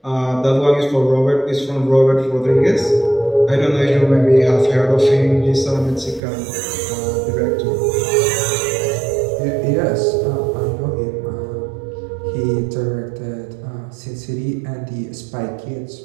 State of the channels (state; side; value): drops out; left; at 6.2 s